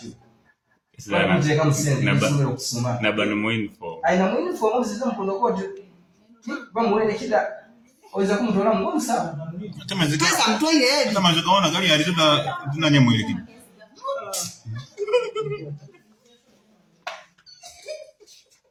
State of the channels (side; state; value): both; identical; correlation 1.00